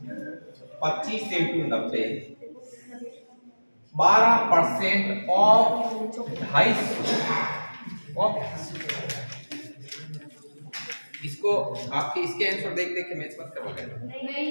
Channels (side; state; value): both; inverted; correlation -1.00